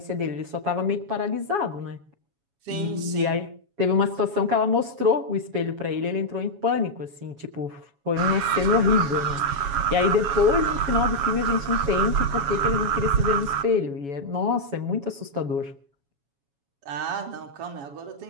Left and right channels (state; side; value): late; left; 7.2 ms